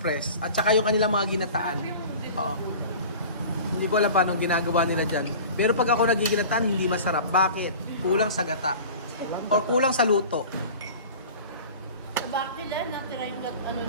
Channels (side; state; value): both; inverted; correlation -0.39